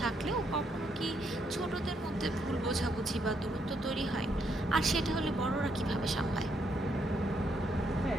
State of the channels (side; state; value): both; normal; correlation 0.75